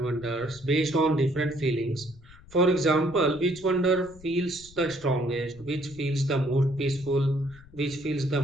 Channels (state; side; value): noise; left; rumble, 22 dB below the sound